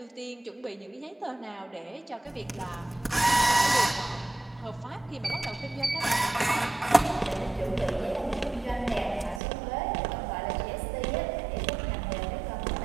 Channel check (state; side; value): drops out; left; at 9.4 s